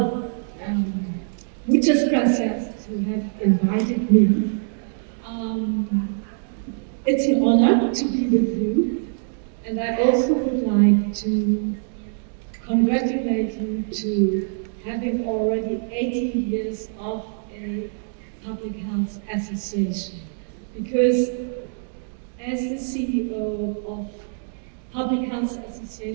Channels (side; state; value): left; silent; digital silence